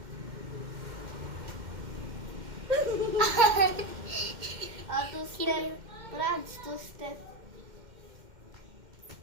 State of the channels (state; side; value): late; left; 2.1 ms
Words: Two step. Franz, two step.